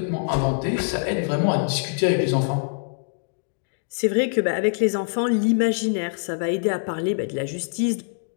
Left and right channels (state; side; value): silent; right; digital silence